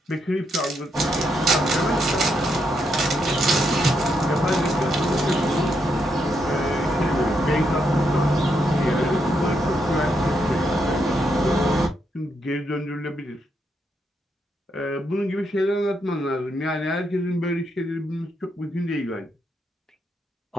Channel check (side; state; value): both; normal; correlation 0.79